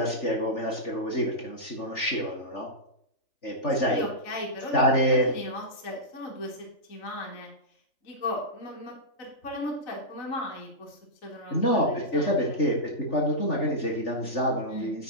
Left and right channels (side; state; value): right; late; 3.4 ms